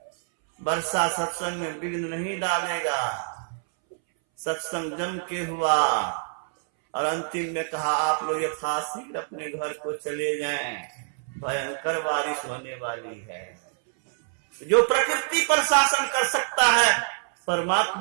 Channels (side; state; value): left; silent; 61 dB below the other